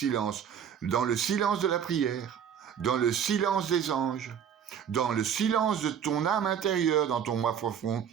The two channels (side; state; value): left; quieter; 8.4 dB